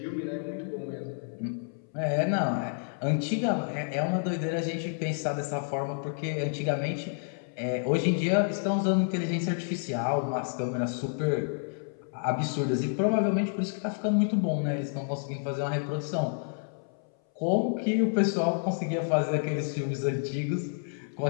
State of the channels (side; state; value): right; silent; 58 dB below the other